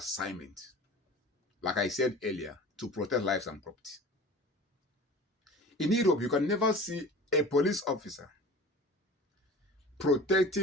like I said earlier, to protect lives and property. In Europe, you can never see a police officer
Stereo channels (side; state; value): both; normal; correlation 0.40